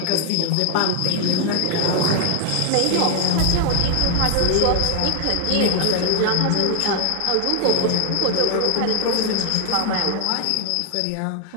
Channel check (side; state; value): both; different; correlation 0.00